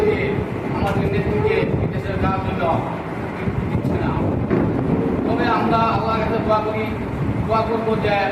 দিয়ে আমাদের নেত্রীকে বিদেশে যাওয়ার জন্য দিচ্ছে না। তবে আমরা আল্লাহর কাছে দোয়া করবো যে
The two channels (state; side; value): identical; both; correlation 1.00